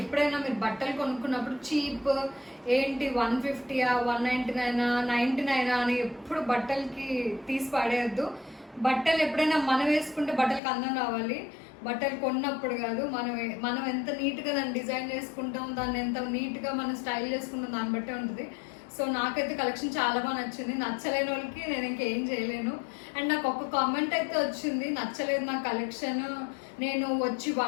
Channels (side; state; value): right; drops out; at 10.6 s